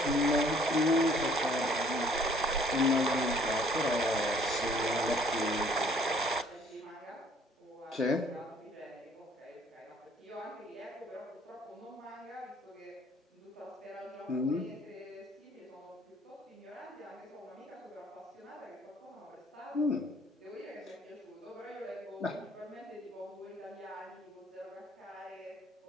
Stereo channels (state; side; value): normal; both; correlation 0.59